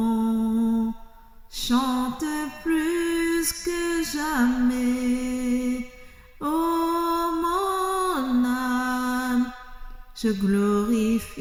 Chante plus que jamais, ô mon âme, je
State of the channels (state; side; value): identical; both; correlation 1.00